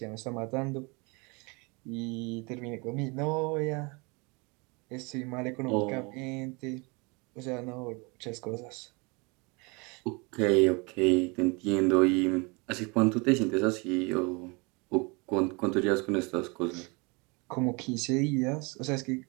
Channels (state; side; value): quieter; left; 29.1 dB